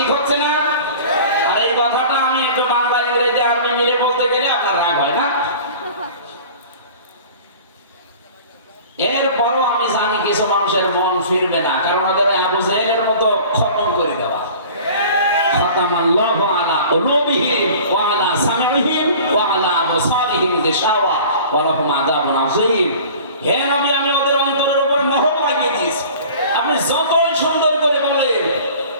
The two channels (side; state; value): both; inverted; correlation -0.43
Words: হচ্ছে না? আর এই কথাটা আমি একটু বাংলা ইংরেজি আরবি মিলে বলতে গেলে আপনার রাগ হয় না? এরপরও আমি জানি কিছু মানুষের মন ফিরবে না, কারণ ওদের আবু জাহেলের মতো খতম করে দেওয়া। খতামাল্লাহু আলা কুলুবিহিম ওয়া আলা সামিইহিম ওয়া আলা আবসারিহিম গিশাওয়া ওয়া লাহুম আযাবুন আযীম। হে নবী, আমি ওদের অন্তরের উপর মোহর লাগিয়ে দিয়েছি। আপনি যতই সুন্দর করে বলেন,